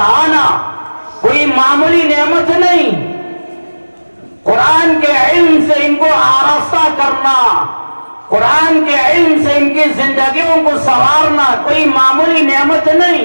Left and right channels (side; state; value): both; inverted; correlation -1.00